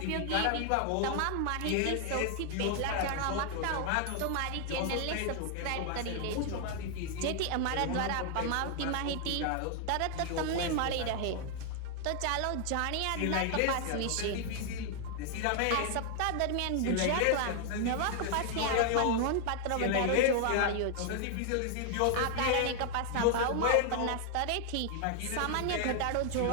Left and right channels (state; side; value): different; both; correlation 0.00